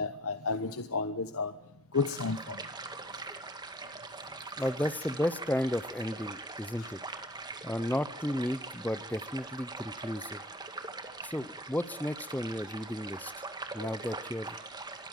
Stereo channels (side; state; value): both; normal; correlation 0.52